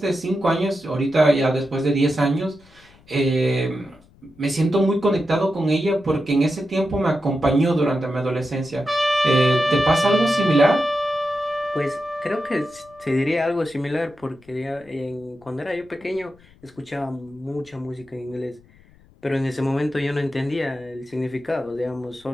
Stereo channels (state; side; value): noise; left; rumble, 28 dB below the sound